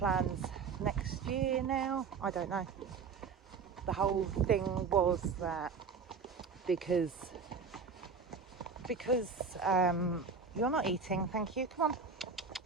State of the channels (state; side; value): quieter; left; 5.3 dB